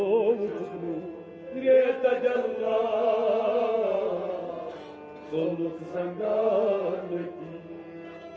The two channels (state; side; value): identical; both; correlation 1.00